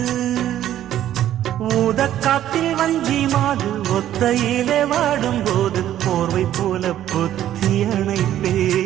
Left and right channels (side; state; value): left; quieter; 12.0 dB